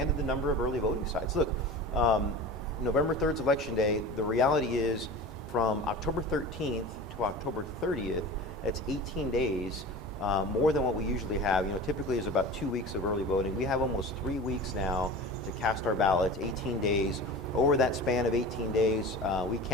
the number of early voting sites. Look, November 3rd's election day. The reality is, from October 13th to October 30th, that's 18 days. More than what we usually have. Typically is about 2 weeks of early voting. We have almost 3 weeks now to cast our ballots, 18 days. Over that span of 18 days, we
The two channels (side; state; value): both; normal; correlation 0.34